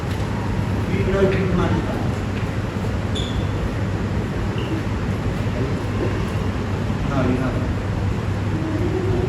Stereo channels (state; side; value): identical; both; correlation 1.00